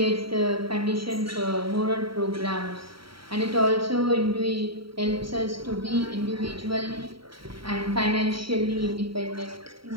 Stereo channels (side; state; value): left; late; 0.74 ms